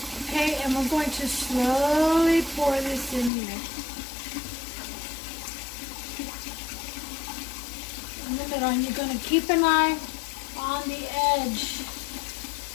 Okay, and we're going to slowly pour this in here. In the middle, and you're going to keep an eye on the edge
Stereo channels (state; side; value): drops out; right; at 3.3 s